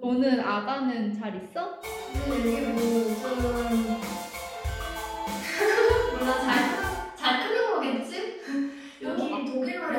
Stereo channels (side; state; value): both; identical; correlation 1.00